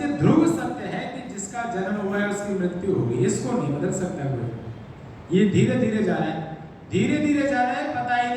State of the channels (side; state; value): both; identical; correlation 1.00